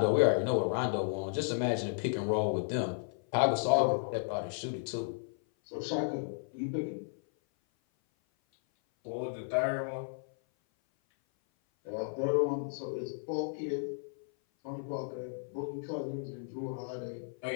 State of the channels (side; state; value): right; silent; 55 dB below the other